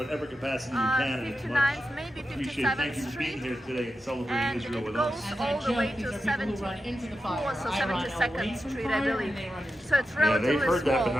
capacity you can. And it's much maybe appreciated. 57th Thank you for being Street, here today and celebrating and Israel it with goes us. all the way to 74th or 72nd Street, I believe. So it's Yeah, relatively they've heard that, but small.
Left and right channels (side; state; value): both; normal; correlation 0.89